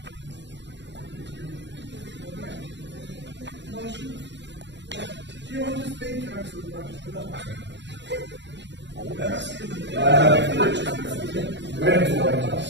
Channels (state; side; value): late; left; 0.52 ms